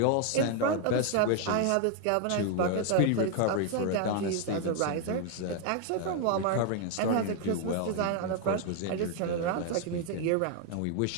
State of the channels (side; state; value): both; different; correlation 0.01